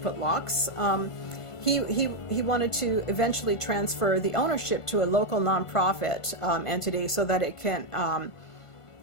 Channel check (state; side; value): late; right; 1.5 ms